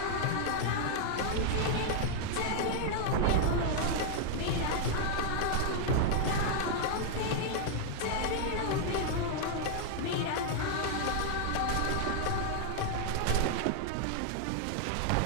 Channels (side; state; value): both; different; correlation -0.01